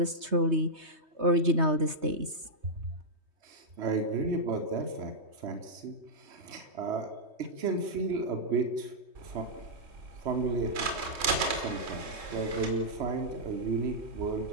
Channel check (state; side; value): late; left; 3.2 ms